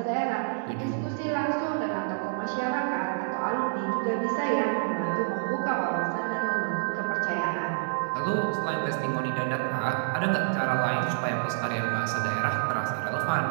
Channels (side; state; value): left; silent; digital silence